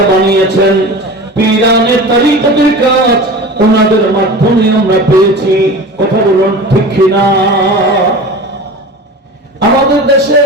বানিয়েছেন। পীরানে তরিকতের কাজ ওনাদের মাধ্যমে আমরা পেয়েছি। কথা বলুন ঠিক কিনা? আমাদের দেশে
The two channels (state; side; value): normal; both; correlation 0.35